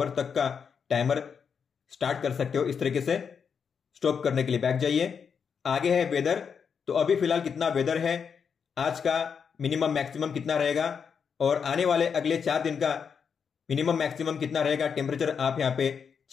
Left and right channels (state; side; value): quieter; right; 6.6 dB